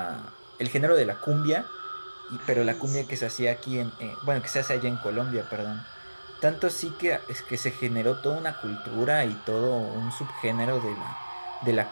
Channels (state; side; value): inverted; both; correlation -1.00